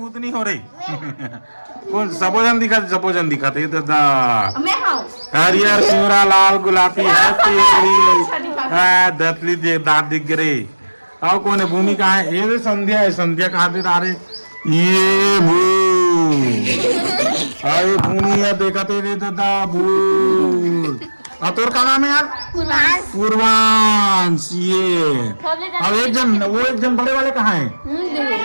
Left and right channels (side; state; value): both; inverted; correlation -1.00